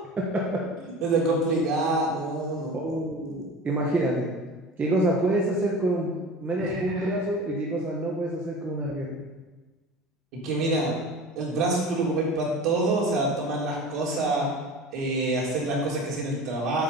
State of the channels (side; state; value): both; normal; correlation 0.36